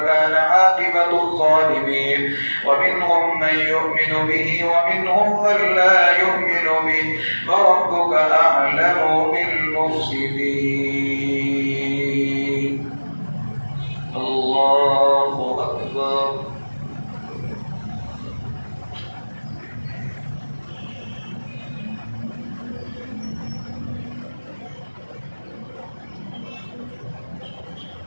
عاقبة الظالمين ومنهم من يؤمن به ومنهم من لا يؤمن به وربك أعلم بالمفسدين الله أكبر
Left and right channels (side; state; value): both; inverted; correlation -1.00